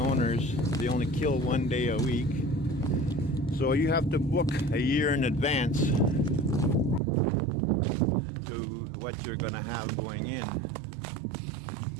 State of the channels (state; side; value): drops out; left; at 7.0 s